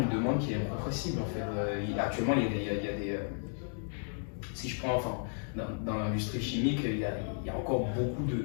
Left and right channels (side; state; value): right; silent; digital silence